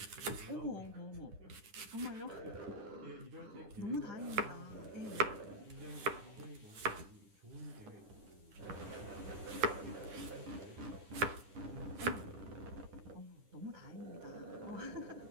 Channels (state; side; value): late; left; 9.8 ms